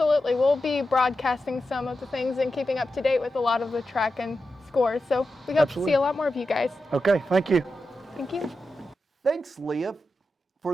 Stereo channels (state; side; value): normal; both; correlation 0.90